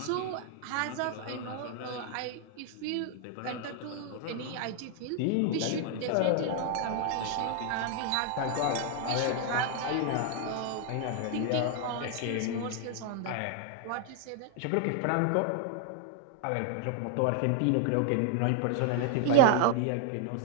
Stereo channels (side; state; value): both; different; correlation 0.00